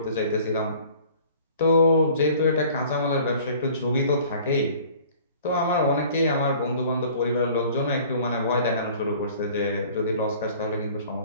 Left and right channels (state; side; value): inverted; both; correlation -0.50